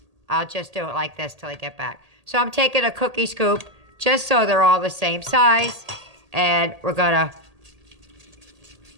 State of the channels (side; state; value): left; late; 1.8 ms